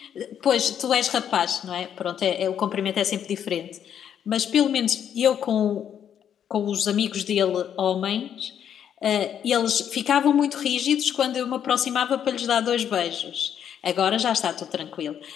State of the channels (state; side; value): quieter; right; 9.1 dB